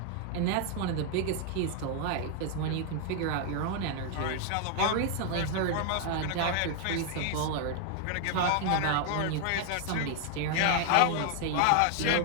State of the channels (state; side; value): different; both; correlation 0.00